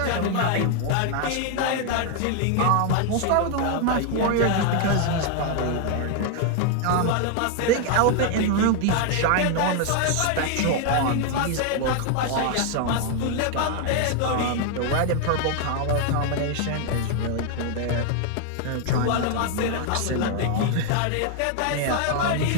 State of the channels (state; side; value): different; both; correlation 0.00